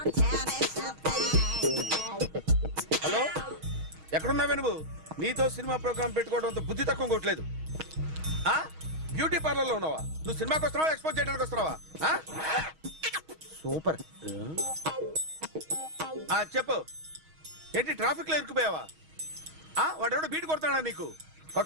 హలో, ఎక్కడున్నావే నువ్వు? నీతో సినిమా ప్రోగ్రామ్ పెట్టుకోవడంతో బుద్ధి తక్కువ కొట్టలేదు. బ్యూటీ పార్లర్ లో ఉన్నావా? నువ్వు సినిమాకి వస్తున్నావా, ఎక్స్పోజ్ చేయడానికి వస్తున్నావా? సూపర్. చెప్పు, ఏంటి ట్రాఫిక్ లో ఇరుక్కుపోయావా? వాడెవడో బీట్ కొడతాడా నీకు?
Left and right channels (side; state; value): left; late; 6.3 ms